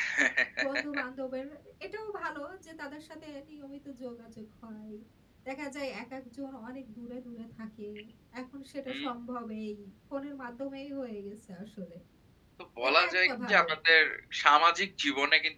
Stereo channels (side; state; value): both; identical; correlation 1.00